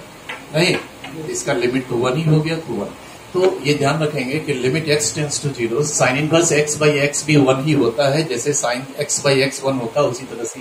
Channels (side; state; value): both; identical; correlation 1.00